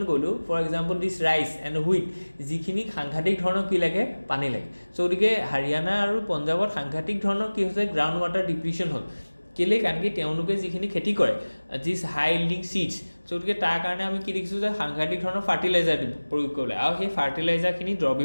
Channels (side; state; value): both; inverted; correlation -1.00